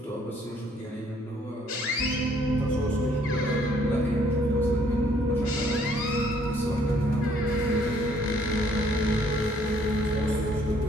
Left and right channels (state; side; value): normal; both; correlation 0.64